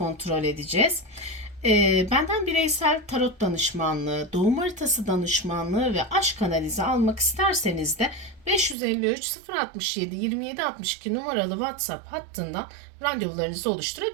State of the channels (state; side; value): drops out; left; at 8.8 s